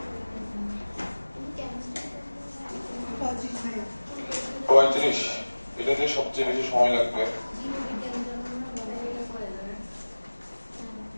পঁয়ত্রিশ, এটাতে সবচেয়ে বেশি সময় লাগবে।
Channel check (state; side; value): inverted; both; correlation -1.00